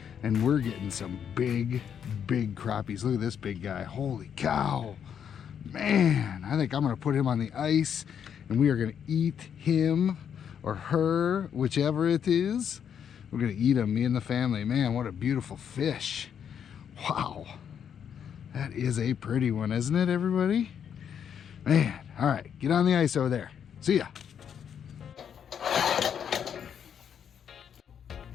and we're getting some big crappies. Look at this big guy. Holy cow. Man, I think I'm gonna put him on the ice and we are gonna eat him or her, whichever it is. We're gonna eat him, me and the family. Man, what a beautiful fish. Wow, that is a pretty one, isn't it, everybody? Man, all right, get on the ice over there. See ya.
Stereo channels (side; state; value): right; quieter; 8.2 dB